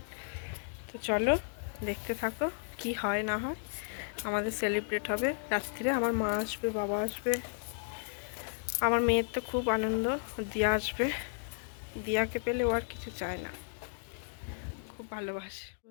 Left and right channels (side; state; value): right; silent; digital silence